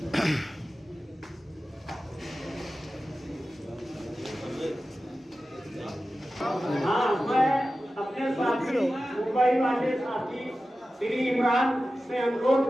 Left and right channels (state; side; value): normal; both; correlation 0.94